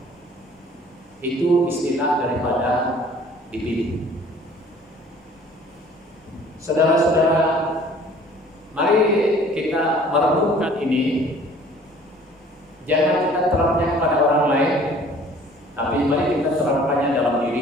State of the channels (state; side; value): normal; both; correlation 0.52